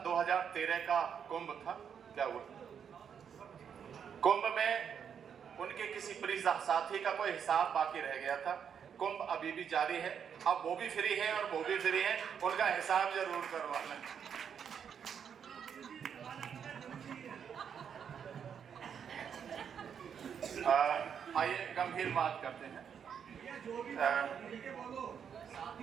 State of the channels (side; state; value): left; quieter; 7.6 dB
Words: 2013 का कुंभ था, क्या हुआ? कुंभ में उनके किसी प्रिय साथी का कोई हिसाब बाकी रह गया था। कुंभ अभी भी जारी है, अब वो भी फ्री है और वो भी फ्री है, उनका हिसाब जरूर करवा लें। आइए गंभीर बात करते हैं।